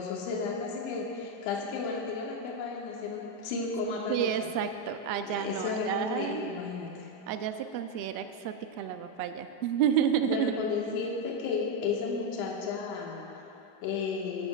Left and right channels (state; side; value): late; right; 5.0 ms